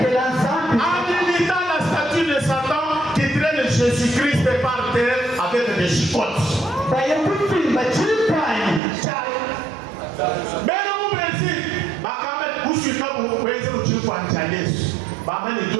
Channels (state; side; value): drops out; left; at 8.8 s